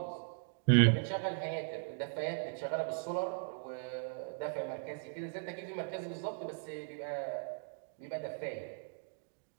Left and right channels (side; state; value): left; silent; digital silence